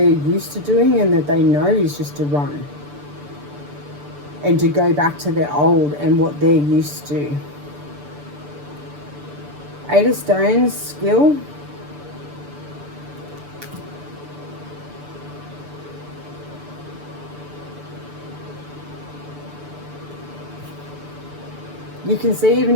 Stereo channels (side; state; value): left; late; 6.8 ms